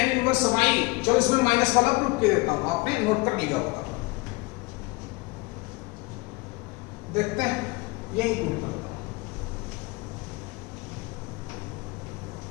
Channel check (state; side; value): quieter; right; 24.0 dB